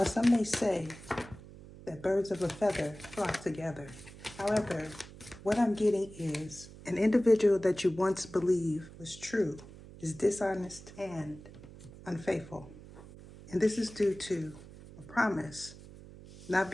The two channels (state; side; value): noise; right; hum, 17 dB below the sound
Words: some may say that birds of a feather flock together. However, what I'm getting is an individual that you once believed was true is dishonest and unfaithful. And this is due to a promise not